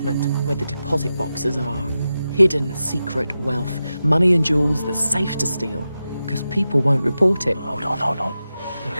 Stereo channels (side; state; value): both; inverted; correlation -0.91